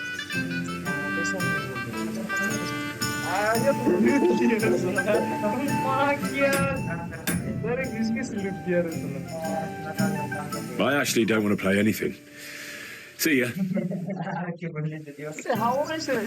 I actually don't want to play anything. See ya.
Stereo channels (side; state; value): both; identical; correlation 1.00